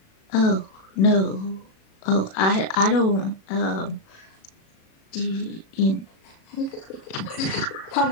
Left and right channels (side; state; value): right; late; 37 ms